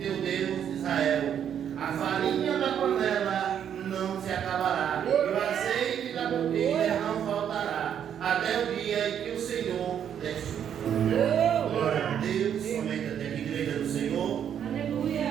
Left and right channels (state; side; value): quieter; left; 9.0 dB